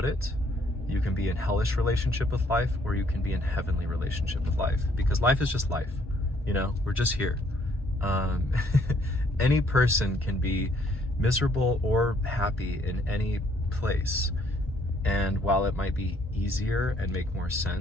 it. You can be in hellish relationship with life, or you can be in heavenly relationship with life, because life is just life. We're just here. Any person can be miserable or happy in any place. And while it might be easier and make more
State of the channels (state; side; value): normal; both; correlation 0.66